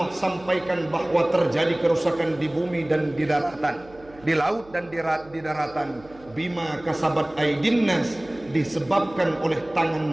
sampaikan bahwa terjadi kerusakan di bumi dan di daratan, di laut dan di daratan, bima kasabat aidinnas, disebabkan oleh tangan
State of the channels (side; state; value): right; noise; hum, 24 dB below the sound